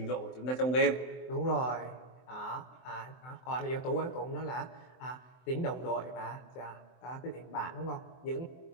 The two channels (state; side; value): late; right; 24 ms